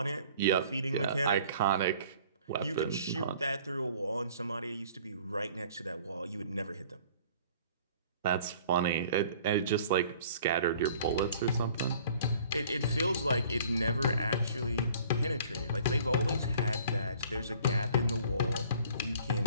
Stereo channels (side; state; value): both; inverted; correlation -0.52